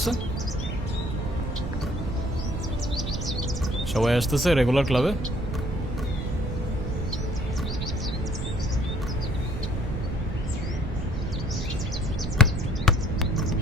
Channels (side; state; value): right; noise; rumble, 3 dB below the sound